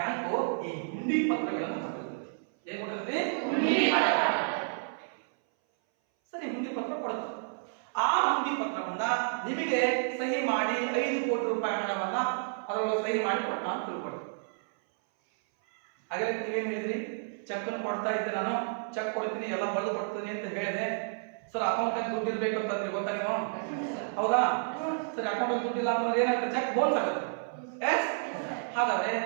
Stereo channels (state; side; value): silent; left; 57 dB below the other